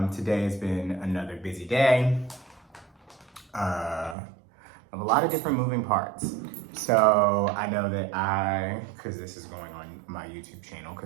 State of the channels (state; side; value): drops out; left; at 4.2 s